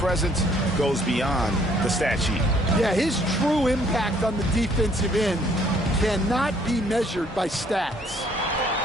goes beyond the stat sheet. Yeah, his true impact on the defensive end cannot be measured by stats.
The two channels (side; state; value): both; normal; correlation 0.63